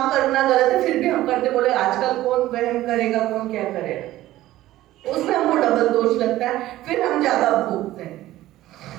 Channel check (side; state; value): left; quieter; 15.4 dB